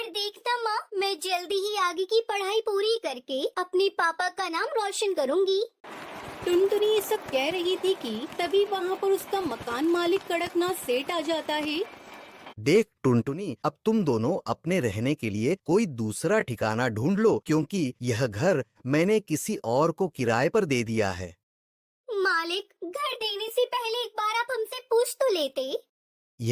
देखना माँ, मैं जल्दी ही आगे की पढ़ाई पूरी करके अपने पापा का नाम रोशन करूँगी। टुनटुनी ये सब कह रही थी कि तभी वहाँ पर उसका मकान मालिक कड़कनाथ सेठ आ जाता है। देख टुनटुनी, अब तुम दोनों अपने रहने के लिए कोई दूसरा ठिकाना ढूंढ लो, क्योंकि यह घर मैंने किसी और को किराए पर दे दिया है। मालिक, घर देने से पहले एक बार आप हमसे पूछ तो लेते।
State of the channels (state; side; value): identical; both; correlation 1.00